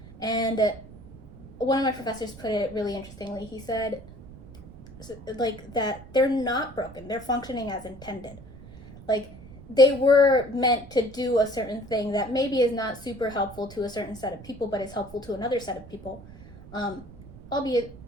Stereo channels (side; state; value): right; noise; rumble, 18 dB below the sound